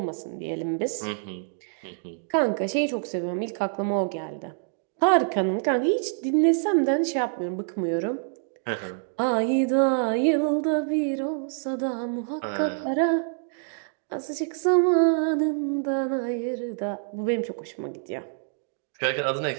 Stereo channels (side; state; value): left; silent; digital silence